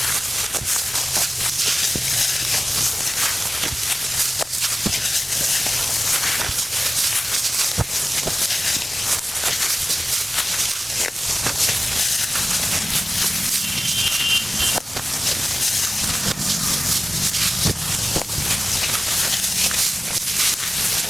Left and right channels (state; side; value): normal; both; correlation 0.96